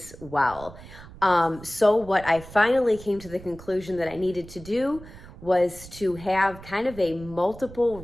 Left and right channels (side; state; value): right; noise; rumble, 17 dB below the sound